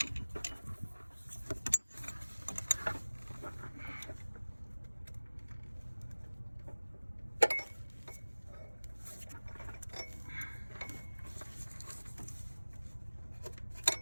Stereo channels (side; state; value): both; inverted; correlation -1.00